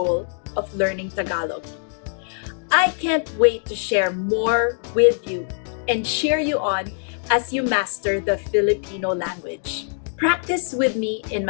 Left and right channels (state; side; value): silent; right; 64 dB below the other